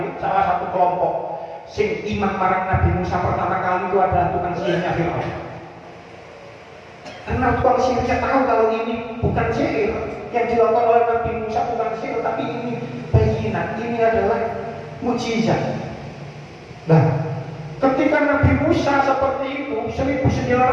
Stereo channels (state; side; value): identical; both; correlation 1.00